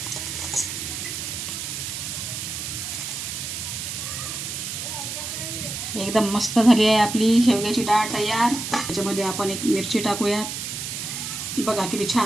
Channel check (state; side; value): noise; right; hiss, 5 dB below the sound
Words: एकदम मस्त झाली आहे आपली शेवग्याची डाळ तयार. त्याच्यामध्ये आपण एक मिरची टाकूयात. बघा किती